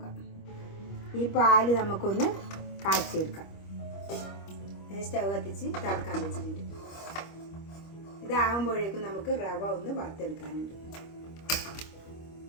ഈ പാല് നമുക്കൊന്ന് കാച്ചിയെടുക്കാം. സ്റ്റൗ കത്തിച്ച് തിളക്കാൻ വെച്ചിട്ടുണ്ട്. ഇതാകുമ്പോഴേക്കും നമുക്ക് റവ ഒന്ന് വറുത്തെടുക്കാനുണ്ട്.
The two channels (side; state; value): right; late; 25 ms